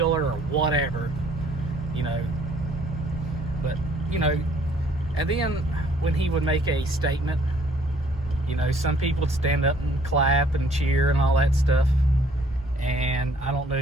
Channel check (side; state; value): both; normal; correlation 0.60